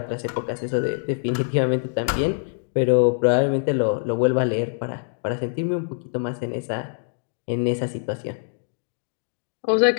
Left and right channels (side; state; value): right; silent; digital silence